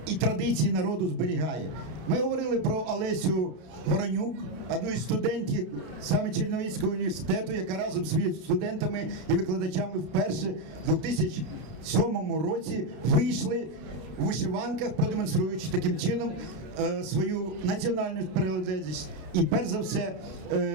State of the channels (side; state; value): left; late; 32 ms